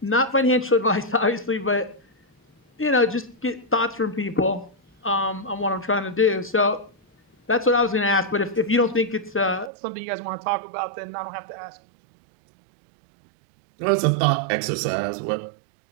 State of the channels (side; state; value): left; drops out; at 9.7 s